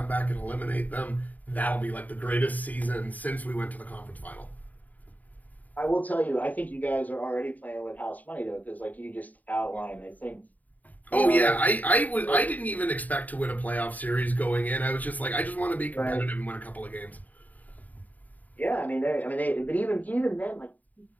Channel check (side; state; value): right; late; 0.078 ms